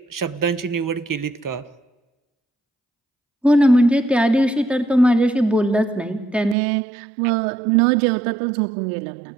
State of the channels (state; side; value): drops out; left; at 6.6 s